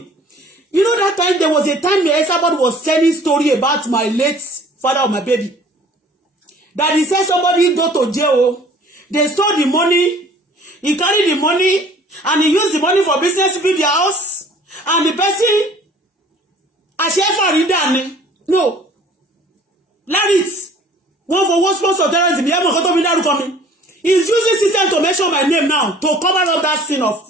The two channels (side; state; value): both; normal; correlation 0.52